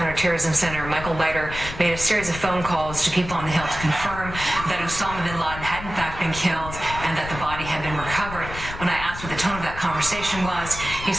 Center, Michael Leiter, made a series of phone calls to people on the Hill to confirm that Osama bin Laden had in fact been killed and that the body had been recovered. When I asked asked what the tone of that conversation was, he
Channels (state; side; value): noise; left; rumble, 10 dB below the sound